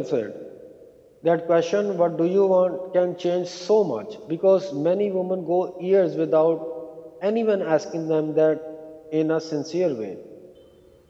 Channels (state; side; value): identical; both; correlation 1.00